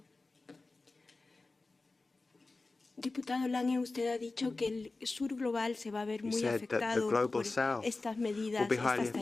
Diputado Lange, usted ha dicho que el sur global se va a ver muy afectado por estas medidas, estas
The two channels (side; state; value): right; quieter; 3.4 dB